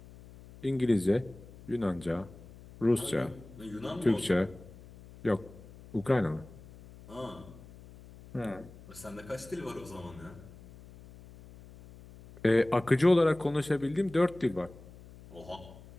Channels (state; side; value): noise; left; hum, 19 dB below the sound